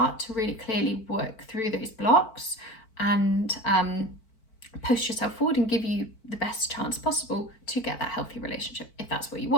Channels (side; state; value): right; late; 4.5 ms